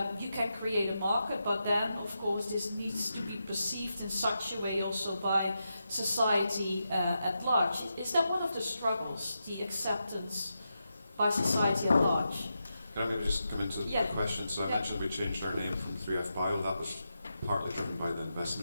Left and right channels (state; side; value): inverted; both; correlation -0.87